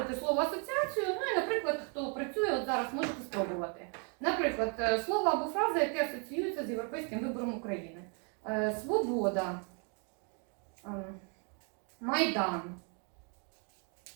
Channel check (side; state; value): left; quieter; 37.8 dB